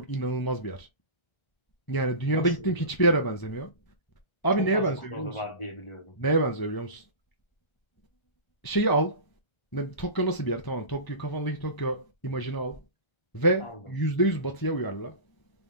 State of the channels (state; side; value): late; right; 1.0 ms